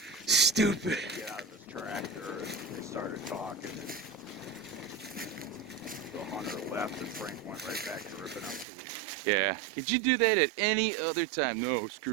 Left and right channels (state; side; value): drops out; left; at 8.7 s